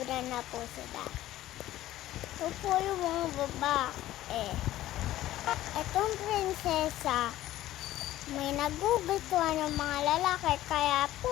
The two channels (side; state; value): right; quieter; 14.5 dB